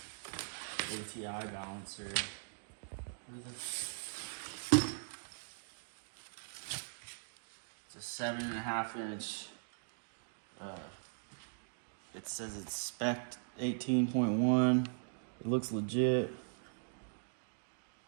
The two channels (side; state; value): left; silent; digital silence